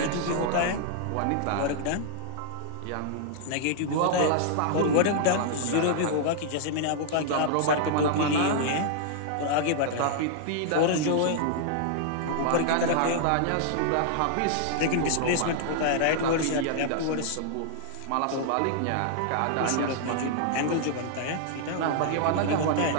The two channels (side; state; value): both; different; correlation -0.01